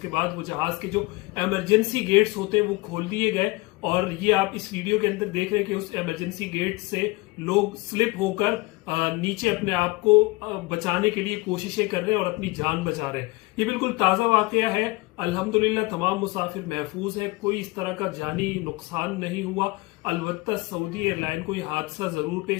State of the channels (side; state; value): right; quieter; 23.2 dB